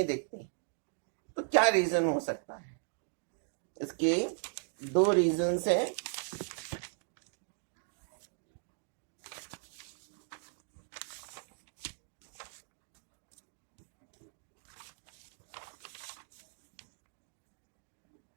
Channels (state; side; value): silent; left; digital silence